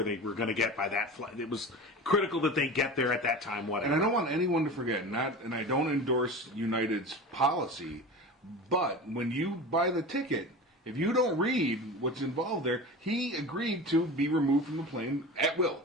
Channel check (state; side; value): normal; both; correlation 0.31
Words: they were going to get by that flight, it was critical that they get there at that time. Whatever. And I don't want anyone to forget, and I don't endorse United's policy, but when you buy the ticket, If you don't read what's involved there, he agreed to be removed from the plane at will.